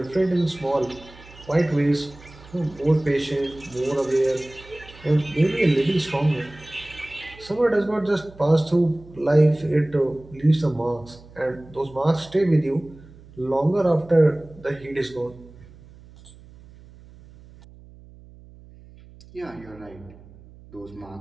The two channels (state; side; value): noise; right; hum, 22 dB below the sound